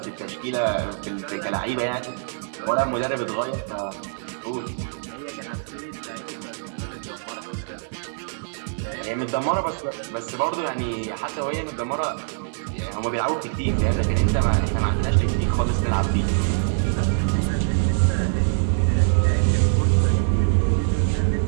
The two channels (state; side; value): silent; left; digital silence